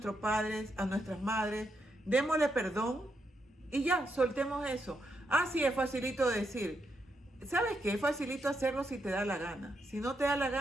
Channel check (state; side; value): normal; both; correlation 0.81